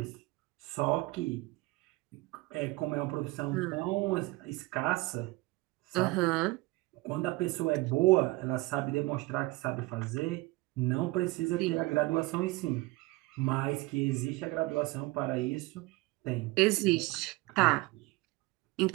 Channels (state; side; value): quieter; left; 21.8 dB